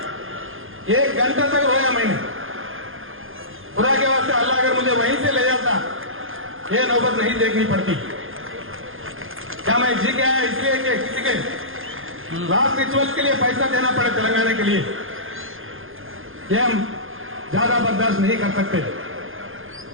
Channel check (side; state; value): left; late; 0.59 ms